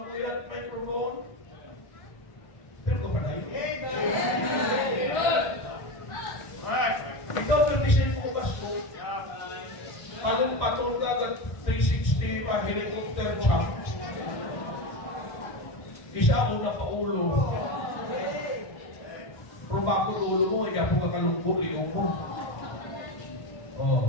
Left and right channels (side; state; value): right; late; 1.4 ms